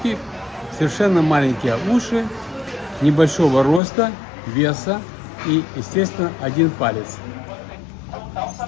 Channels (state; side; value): drops out; right; at 3.8 s